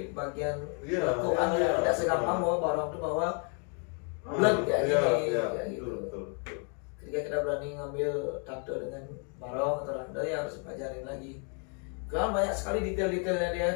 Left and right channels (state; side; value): quieter; right; 39.2 dB